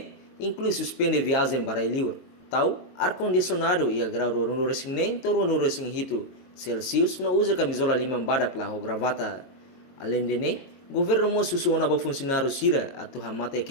inclui suspender viagem para livre. Tau ar-condicionado e a grau no resing nem toro no resing hito Celsius no usa camisola limang badak lah o gravata. Além de governo mo susuona ba funcionário sira atau hamata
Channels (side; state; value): right; late; 22 ms